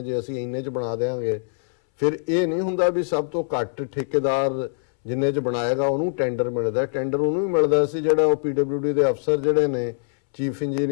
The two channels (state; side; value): silent; right; 63 dB below the other